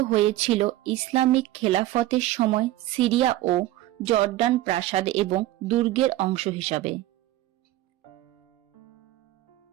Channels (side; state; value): left; quieter; 15.5 dB